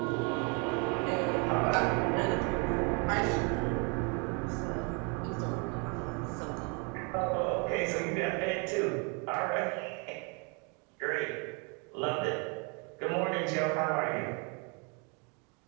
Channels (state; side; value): quieter; left; 34.4 dB